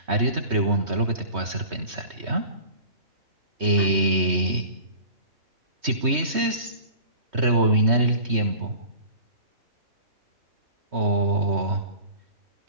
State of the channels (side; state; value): left; late; 3.2 ms